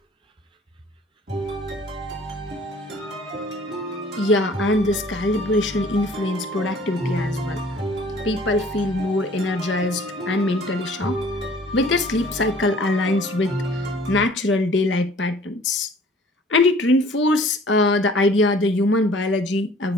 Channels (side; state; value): both; normal; correlation 0.52